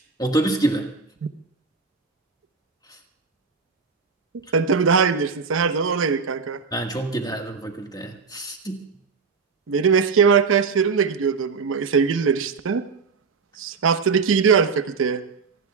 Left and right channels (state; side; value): quieter; left; 5.2 dB